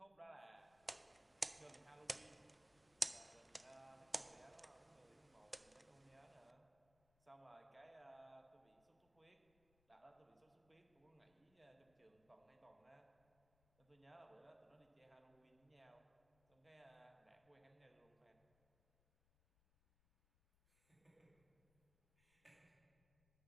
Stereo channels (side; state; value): left; noise; rumble, 28 dB below the sound